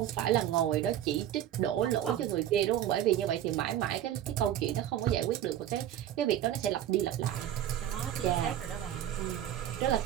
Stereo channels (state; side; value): quieter; left; 11.4 dB